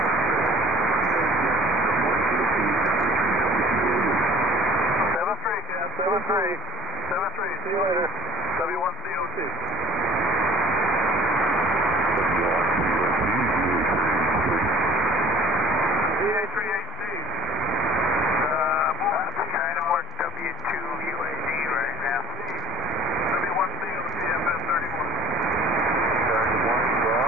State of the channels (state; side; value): normal; both; correlation 0.50